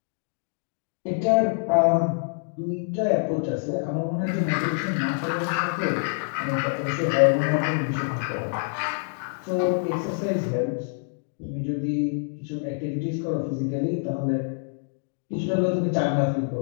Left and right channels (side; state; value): right; silent; digital silence